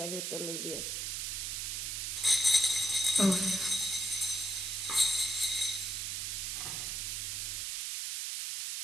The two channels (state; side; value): noise; right; hiss, 2 dB below the sound